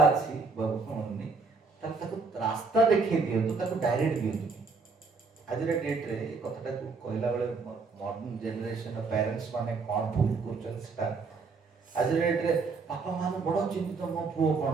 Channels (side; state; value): left; quieter; 4.5 dB